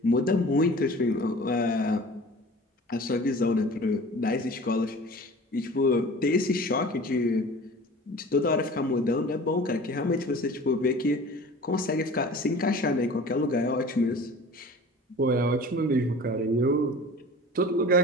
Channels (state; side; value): normal; both; correlation 0.41